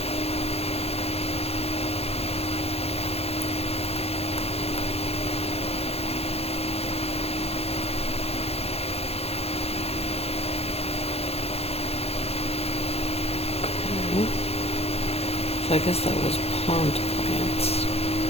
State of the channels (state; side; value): late; right; 0.29 ms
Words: So I guess that was pond plants.